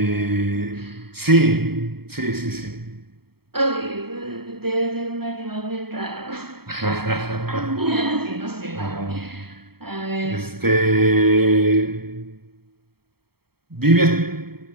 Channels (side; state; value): left; late; 0.95 ms